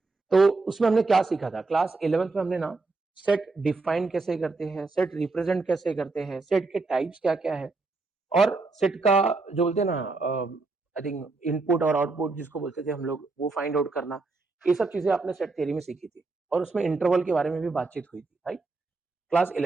तो उसमें हमने क्या सीखा था? क्लास 11th में हमने ना सेट डिफाइन कैसे करते हैं, सेट रिप्रेजेंट कैसे करते हैं, सेट के टाइप्स क्या-क्या है, और सेट का जो बोलते हैं ना आई थिंक इनपुट और आउटपुट जिसको बोलते थे हम लोग, वो फाइंड आउट करना, ये सब चीजें आपने सेट थ्योरी में सीखी थी। और उसमें इंटरवल के बारे में भी बातचीत हुई थी, राइट? क्लास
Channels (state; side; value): quieter; left; 3.7 dB